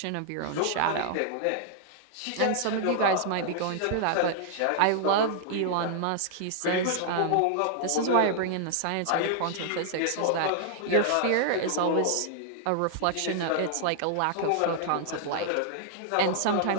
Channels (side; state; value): both; different; correlation -0.01